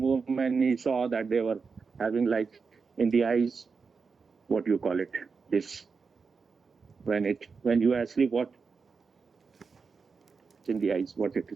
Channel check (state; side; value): quieter; left; 5.1 dB